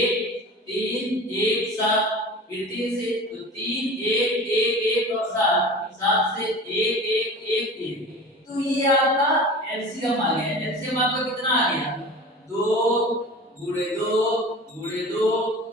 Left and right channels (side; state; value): both; normal; correlation 0.37